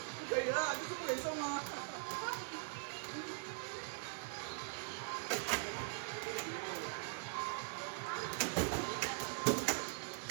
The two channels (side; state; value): left; silent; digital silence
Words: 不可以了，就是不给送啊。